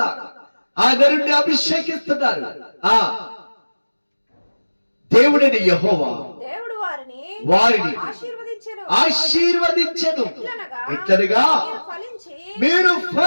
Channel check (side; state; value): both; inverted; correlation -1.00